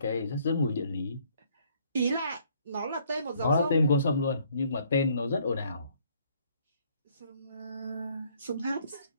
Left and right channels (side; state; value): both; inverted; correlation -0.64